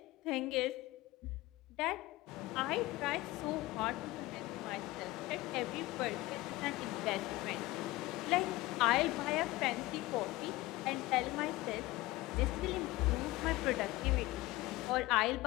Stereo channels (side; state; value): right; quieter; 19.2 dB